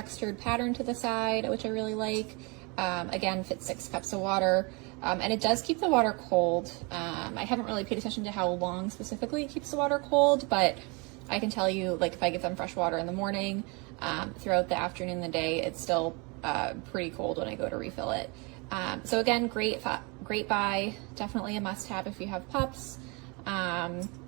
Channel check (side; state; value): left; quieter; 29.9 dB